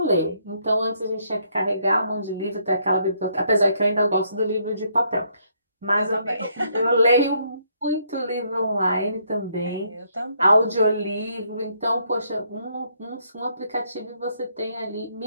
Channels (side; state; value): both; inverted; correlation -0.71